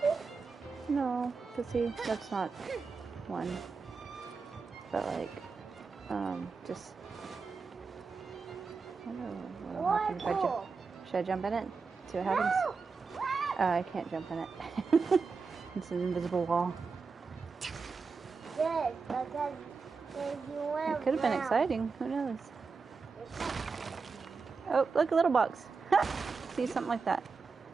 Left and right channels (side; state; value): left; quieter; 4.8 dB